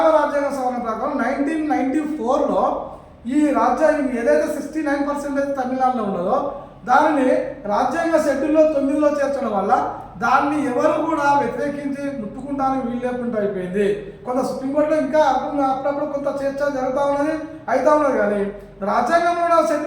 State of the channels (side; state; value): both; identical; correlation 1.00